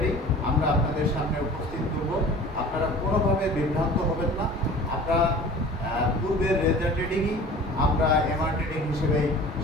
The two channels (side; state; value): both; normal; correlation 0.42